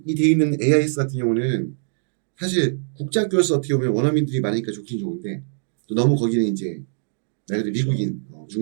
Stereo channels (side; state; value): left; silent; digital silence